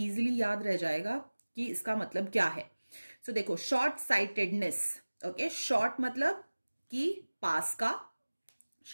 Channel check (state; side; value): inverted; both; correlation -1.00